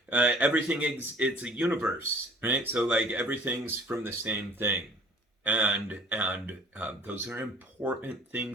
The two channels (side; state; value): both; normal; correlation 0.51